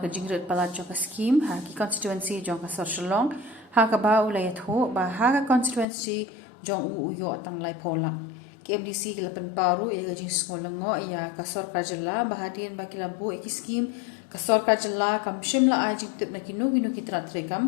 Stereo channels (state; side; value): drops out; right; at 5.9 s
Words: ka jingret pala Jongka scheme ha ki constituency Jongka Sor Shalong ha ka ba ulayat ho ba ha ka constituency Jong u uyo atang lai polak ki MDC ki lapan pau ya ka jing sngo lengo ya ka sor karjala bahadian ba ki labu ki scheme kasor kajala kam shimla ajing tip na kinu kitra